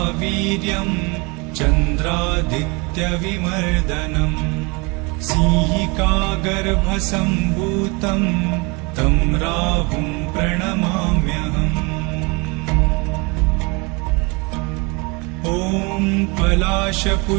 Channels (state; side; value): quieter; left; 28.4 dB